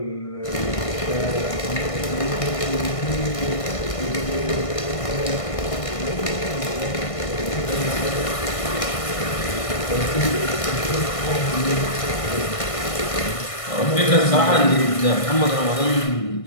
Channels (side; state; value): right; late; 1.6 ms